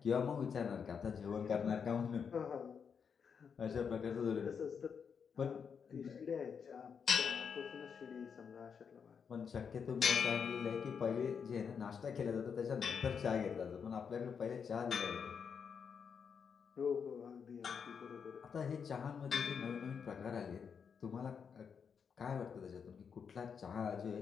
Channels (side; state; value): right; quieter; 6.6 dB